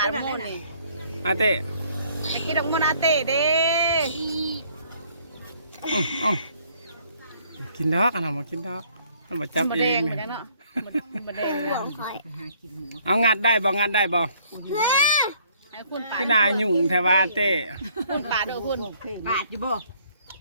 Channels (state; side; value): inverted; both; correlation -0.62